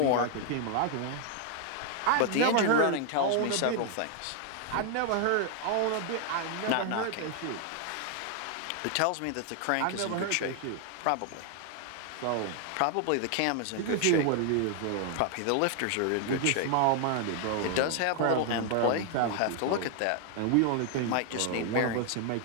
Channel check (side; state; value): both; different; correlation 0.00